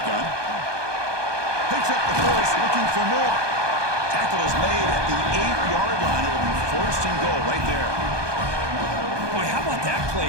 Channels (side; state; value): left; late; 1.2 ms